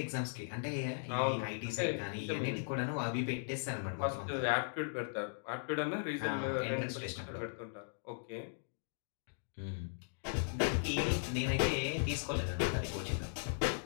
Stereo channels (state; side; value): silent; right; digital silence